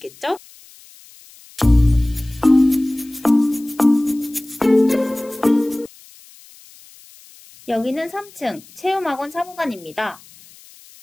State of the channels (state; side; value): noise; left; hiss, 24 dB below the sound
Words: 여기는 3층 체험학원 사무관입니다.